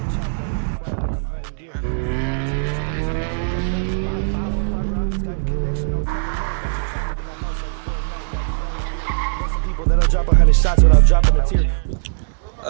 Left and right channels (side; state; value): left; silent; digital silence